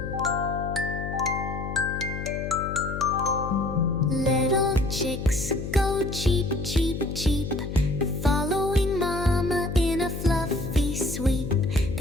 Little chicks go cheep, cheep, cheep, following mama in a fluffy sweep.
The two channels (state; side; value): noise; left; hum, 6 dB below the sound